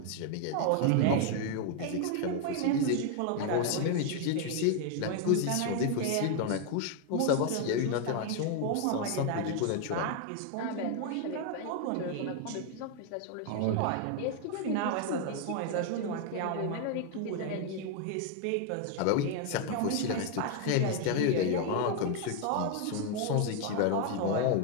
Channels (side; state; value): both; different; correlation 0.01